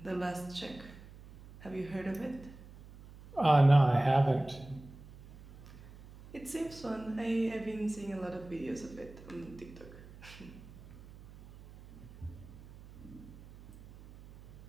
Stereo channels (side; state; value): right; noise; hum, 18 dB below the sound